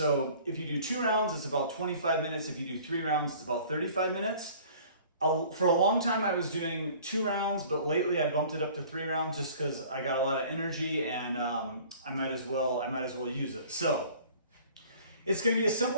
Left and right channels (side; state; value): both; inverted; correlation -0.49